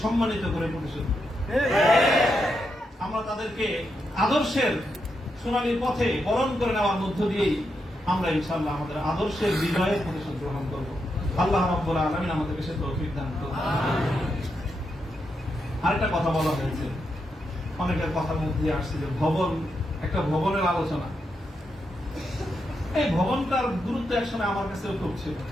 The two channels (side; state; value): both; normal; correlation 0.83